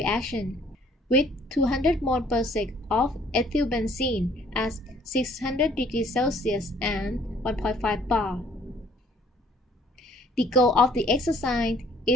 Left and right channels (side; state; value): both; normal; correlation 0.59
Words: with 200 mol per sec of ethylbenzene at 600 degrees Celsius and 1.5 bar. The goal of the exercise